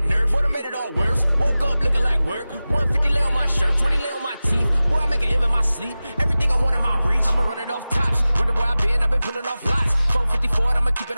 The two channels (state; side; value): inverted; both; correlation -0.96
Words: nerve. Boy, I made it all worse. Woke up looking like work. 150 lay on my shirt, 20 lay on my teeth. Boy, I make an M in my sleep. Everything I want in my reach. I'ma run it off tops. Wonder where I've been pulling off lots. 454, I'ma keep